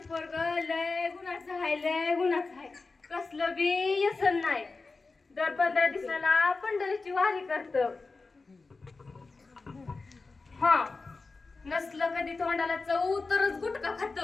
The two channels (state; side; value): quieter; right; 3.9 dB